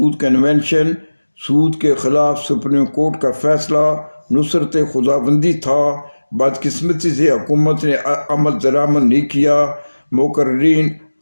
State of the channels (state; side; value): inverted; both; correlation -1.00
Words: کنونشن، سود کے خلاف سپریم کورٹ کا فیصلہ نصرت خداوندی تھا۔ بدقسمتی سے حکومت نے عمل درآمد نہیں کیا۔ مقررین